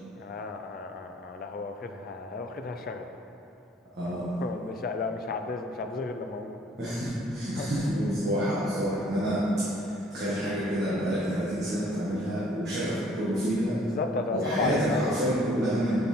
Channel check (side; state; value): both; normal; correlation 0.58